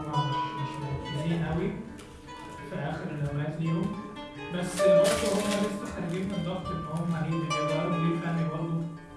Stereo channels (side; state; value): both; identical; correlation 1.00